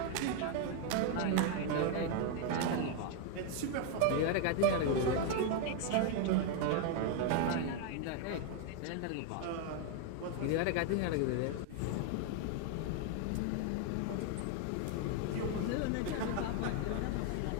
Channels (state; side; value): different; both; correlation 0.01